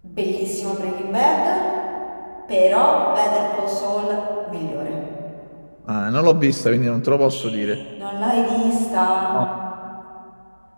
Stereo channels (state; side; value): inverted; both; correlation -1.00